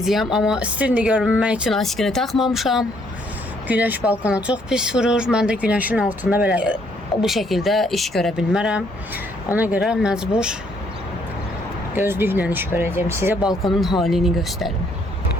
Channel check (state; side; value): normal; both; correlation 0.68